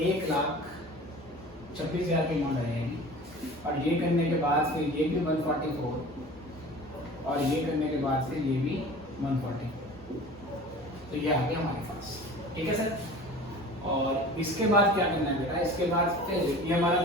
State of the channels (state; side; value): normal; both; correlation 0.40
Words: 1,26,000 की अमाउंट आ जाएगी। और ये करने के बाद फिर ये भी 144, और ये करने के बाद फिर ये भी 140, तो ये आ गया हमारे पास। ठीक है सर। और इसके बाद क्या करना है बेटा, इसके बाद फिर ये हमारा